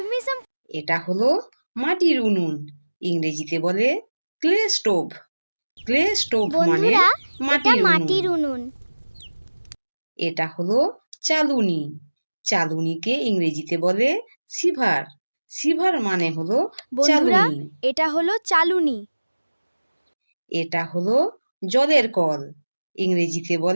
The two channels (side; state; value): both; inverted; correlation -1.00